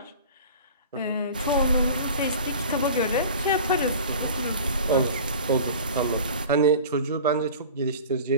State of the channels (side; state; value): both; inverted; correlation -0.39